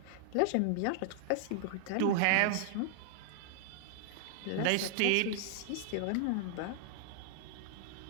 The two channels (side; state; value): both; different; correlation -0.01